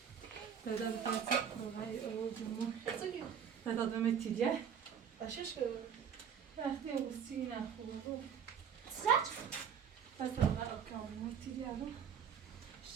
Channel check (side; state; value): left; quieter; 7.8 dB